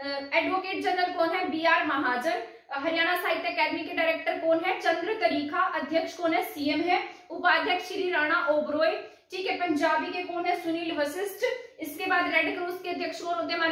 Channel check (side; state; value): both; identical; correlation 1.00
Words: जनरल कौन है, BR महाजन। हरियाणा साहित्य अकादमी के डायरेक्टर कौन है, चंद्र तरीखा। अध्यक्ष कौन है, CM है। उपाध्यक्ष श्री राणा ओबरॉय। ठीक है, पंजाबी के कौन है, सुनील वशिष्ठ। इसके बाद रेड क्रॉस के अध्यक्ष कौन होते हैं,